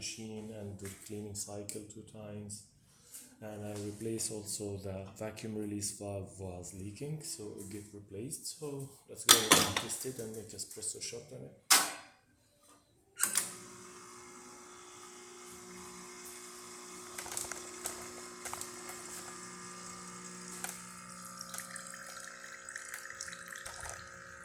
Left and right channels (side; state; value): both; identical; correlation 1.00